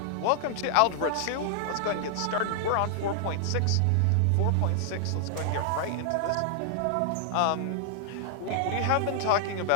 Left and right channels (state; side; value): different; both; correlation -0.01